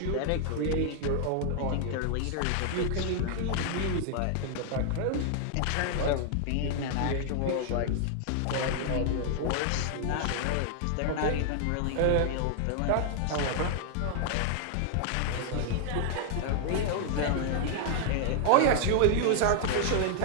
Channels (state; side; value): different; both; correlation 0.00